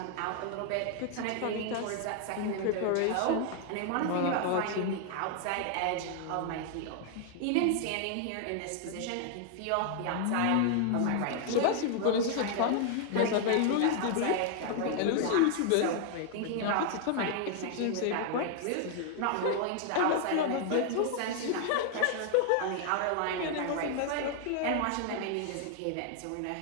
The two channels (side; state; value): both; different; correlation 0.00